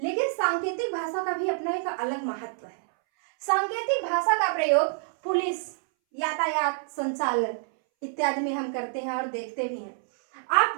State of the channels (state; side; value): silent; left; 60 dB below the other